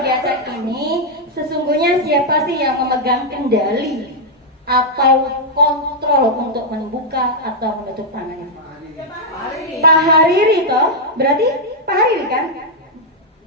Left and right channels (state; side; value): normal; both; correlation -0.03